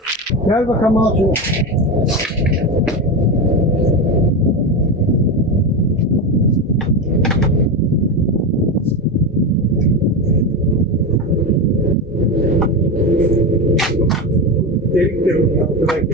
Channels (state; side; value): normal; both; correlation 0.17